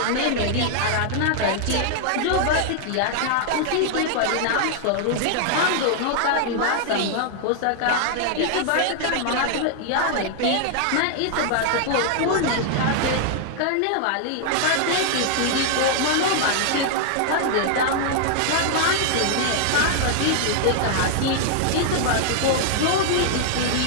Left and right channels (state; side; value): different; both; correlation -0.01